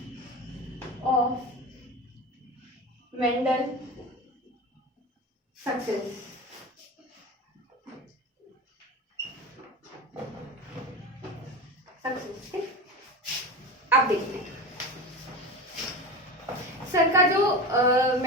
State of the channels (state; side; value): normal; both; correlation 0.27